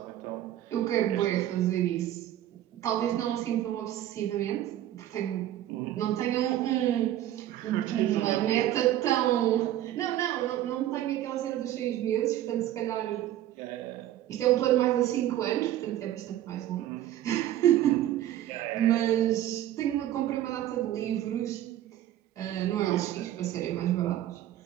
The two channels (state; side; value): quieter; left; 12.8 dB